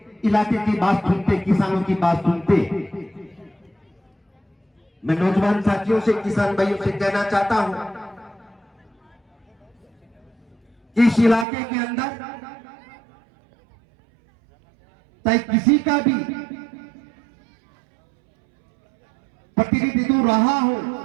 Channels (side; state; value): left; drops out; at 11.5 s